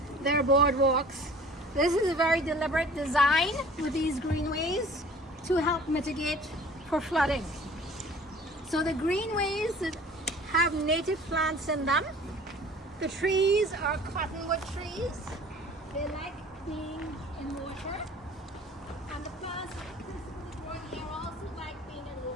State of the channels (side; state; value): both; normal; correlation 0.48